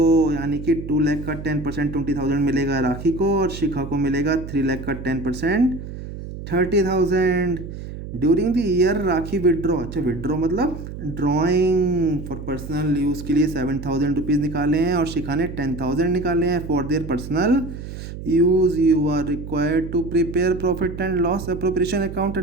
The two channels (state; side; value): noise; right; hum, 10 dB below the sound